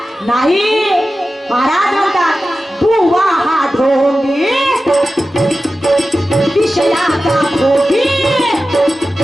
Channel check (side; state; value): both; normal; correlation 0.94